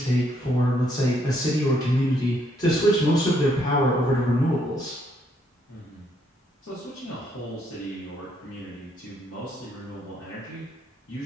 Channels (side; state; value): both; normal; correlation 0.72